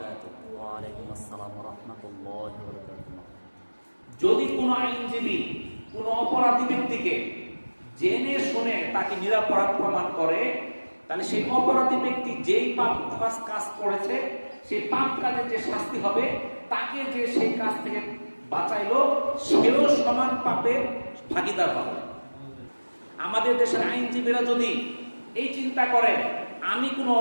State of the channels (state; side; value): inverted; both; correlation -1.00